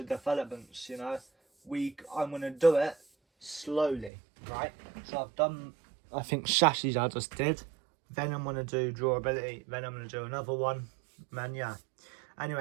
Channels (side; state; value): left; drops out; at 4.1 s